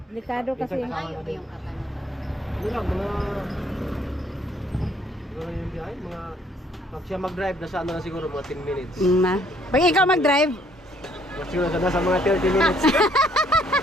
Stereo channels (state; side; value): normal; both; correlation 0.64